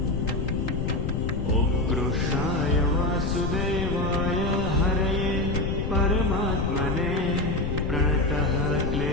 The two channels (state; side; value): noise; left; rumble, 1 dB below the sound